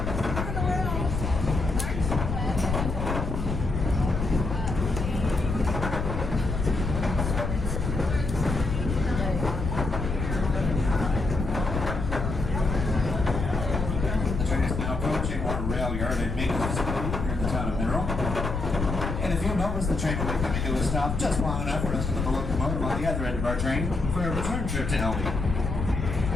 Yard and maintenance facility here in the town of Mineral. And if you'll notice, the train will be coming to a stop just long enough for us to put the locomotive on the other end of our train for a return trip to Elby.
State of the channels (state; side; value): noise; left; rumble, 3 dB below the sound